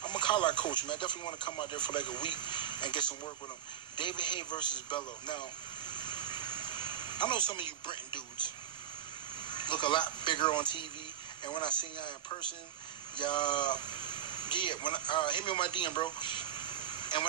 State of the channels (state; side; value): quieter; left; 9.8 dB